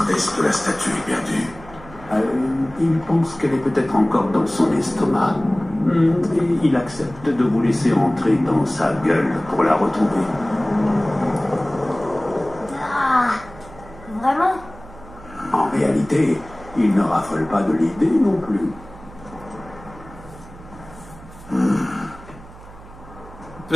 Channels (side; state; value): right; noise; hum, 19 dB below the sound